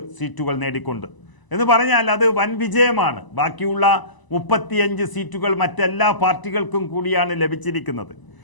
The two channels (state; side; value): late; right; 1.0 ms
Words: സീറ്റുകൾ നേടിക്കൊണ്ട് എന്ന് പറഞ്ഞാൽ അത് വൻ വിജയമാണ്. ബാക്കിയുള്ള 35 സീറ്റുകൾ മറ്റെല്ലാ പാർട്ടികൾക്കും കൂടിയാണ് ലഭിച്ചിരിക്കുന്നത്.